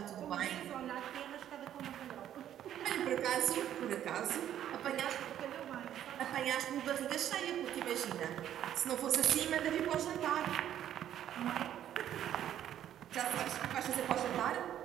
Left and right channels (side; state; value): left; quieter; 10.9 dB